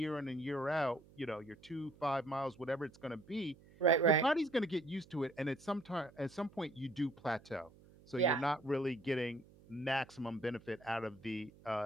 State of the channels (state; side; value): noise; right; hum, 24 dB below the sound